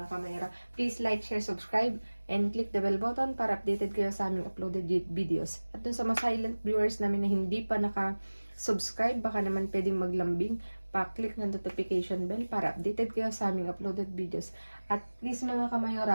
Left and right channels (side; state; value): both; inverted; correlation -1.00